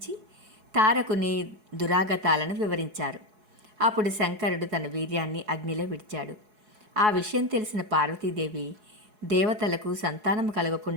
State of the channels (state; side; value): late; left; 4.7 ms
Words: తారకుని దురాగతాలను వివరించారు. అప్పుడు శంకరుడు తన వీర్యాన్ని అగ్నిలో విడిచాడు. ఆ విషయం తెలిసిన పార్వతీదేవి దేవతలకు సంతానం